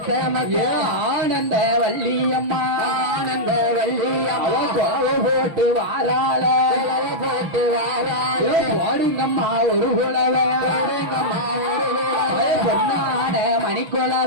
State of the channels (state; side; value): late; left; 6.1 ms